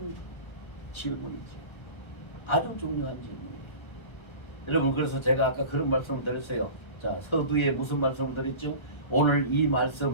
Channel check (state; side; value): late; right; 1.3 ms